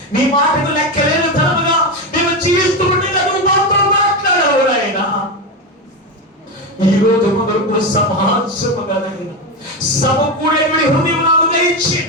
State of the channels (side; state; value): both; normal; correlation 0.14